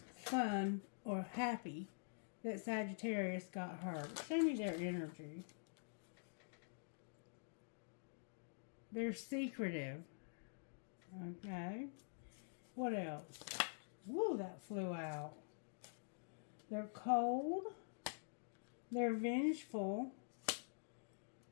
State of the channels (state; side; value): silent; right; digital silence